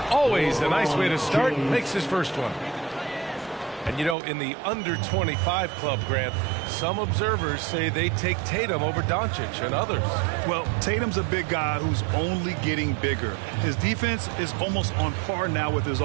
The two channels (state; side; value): drops out; left; at 4.2 s